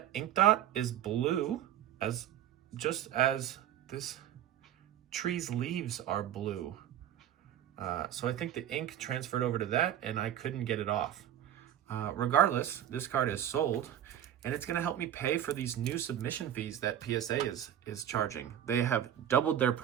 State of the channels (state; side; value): quieter; left; 10.9 dB